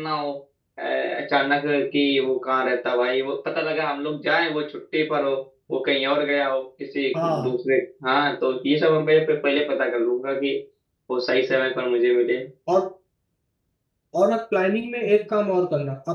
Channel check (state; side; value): identical; both; correlation 1.00